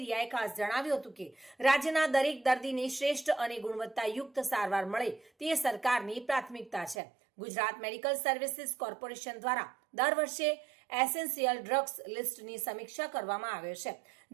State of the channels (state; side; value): drops out; left; at 7.0 s